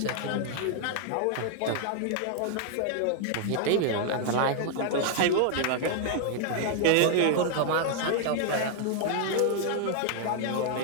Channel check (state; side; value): different; both; correlation 0.00